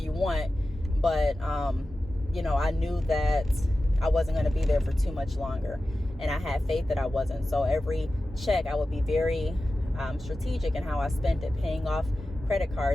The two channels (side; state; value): both; normal; correlation 0.94